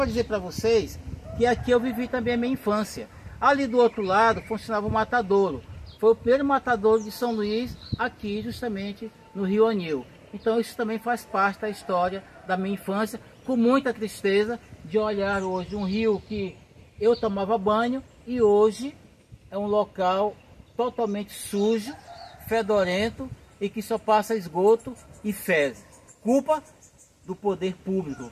dizer para vocês que aqui eu vivi também a minha infância. Ali do outro lado funcionava o matadouro. Foi o primeiro matadouro de São Luís, aqui justamente no Rio Anil. Então isso também faz parte da história da minha infância, com muita tristeza de olhar hoje um rio que eu tomava banho e hoje é um local totalmente sujo, fedorento e que só passa esgoto e fezes. Culpa do poder público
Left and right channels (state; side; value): identical; both; correlation 1.00